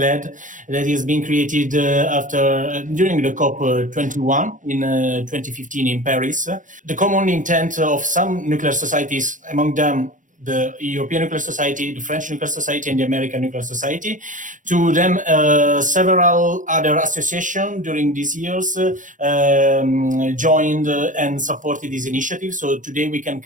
that is being created during the COP21 in 2015 in Paris. The common intent of some nuclear societies, among them the European Nuclear Society, the French Nuclear Society, and the American Nuclear Society. To them, several other associations during these years joined and supported this initiative. So today we can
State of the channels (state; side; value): late; left; 0.37 ms